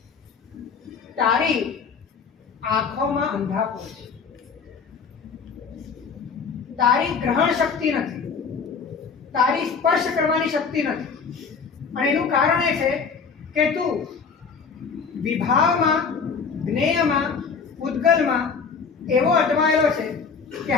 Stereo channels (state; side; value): quieter; right; 5.6 dB